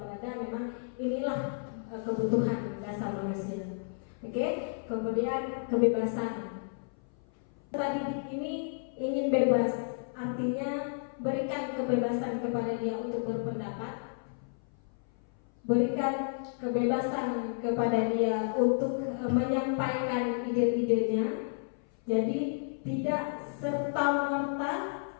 memang inilah kebutuhan dasar manusia. Oke, kemudian kebebasan. Didik ini ingin bebas, artinya berikan kebebasan kepada dia untuk berpendapat, berikan kebebasan kepada dia untuk menyampaikan ide-idenya. Jadi tidak serta-merta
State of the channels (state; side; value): silent; right; 56 dB below the other